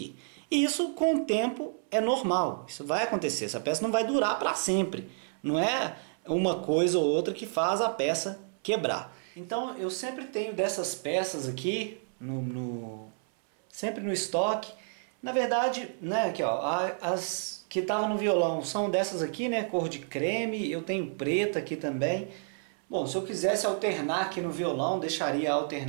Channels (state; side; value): silent; left; 58 dB below the other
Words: E isso com o tempo é normal, isso vai acontecer. Essa peça não vai durar para sempre. Não é uma coisa ou outra que faz a peça quebrar. Então eu sempre tenho dessas peças aqui, sempre no estoque. Na verdade, né, aqui, ó, as que estavam no violão são dessas aqui, né, cor de creme. Eu tenho preta aqui também. Bom, se eu quisesse alternar aqui no violão, deixaria